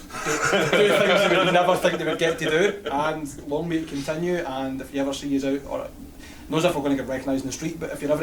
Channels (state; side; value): identical; both; correlation 1.00